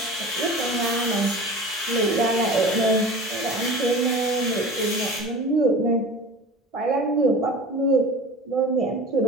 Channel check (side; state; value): both; normal; correlation 0.37